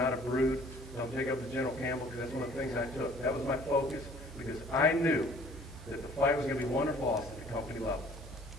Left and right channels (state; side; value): normal; both; correlation 0.54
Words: a brood. Don't take up to General Campbell because that's one of the things I took. That was my focus because I knew that the fight was going to be won or lost at the company level.